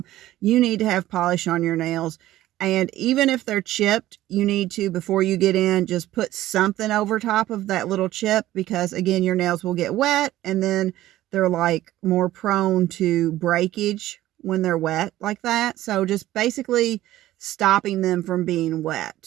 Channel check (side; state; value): left; quieter; 14.9 dB